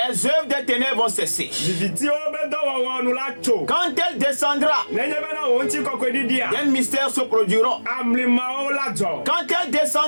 œuvres des ténèbres vont cesser. Quand elle descendra, des mystères se produiront. Quand elle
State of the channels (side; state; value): both; inverted; correlation -1.00